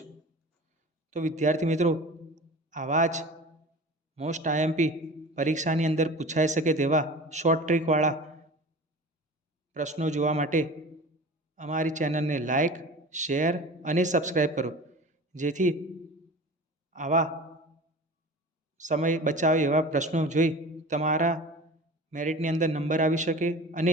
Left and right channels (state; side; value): normal; both; correlation 0.37